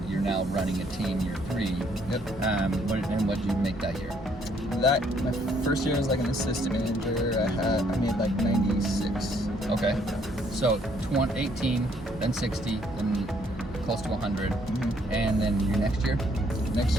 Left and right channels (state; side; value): normal; both; correlation 0.67